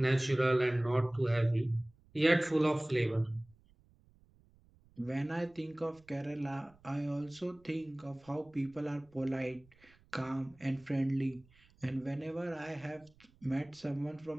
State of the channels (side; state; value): right; noise; rumble, 29 dB below the sound